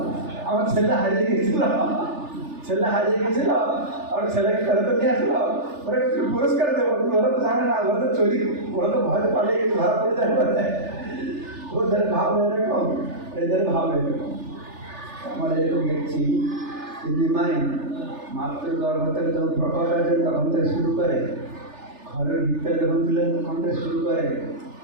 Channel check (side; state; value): left; late; 3.4 ms